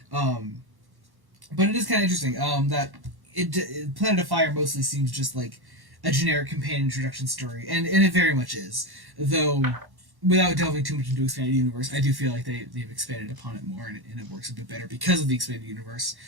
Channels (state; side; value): late; left; 1.1 ms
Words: But it is kind of interesting. That Planet of Fire mostly seems just like a generic companion introduction story, and it very much is. Though, without delving too much into expanded universe, I do feel like they've expanded upon it more, and it works a bit better because of the expanded universe.